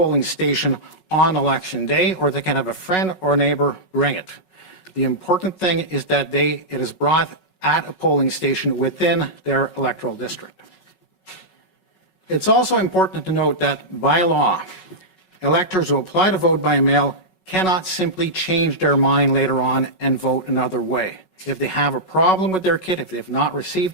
station on Election Day, or they can have a friend or neighbor bring it. The important thing is that it is brought at a polling station within their electoral district. It's also important to note that by law, electors who apply to vote by mail cannot simply change their mind later on and vote another way. If they have a problem with their kit, if they have not received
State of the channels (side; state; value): right; late; 5.4 ms